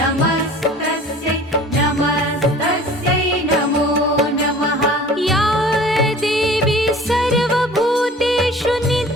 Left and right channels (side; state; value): both; normal; correlation 0.45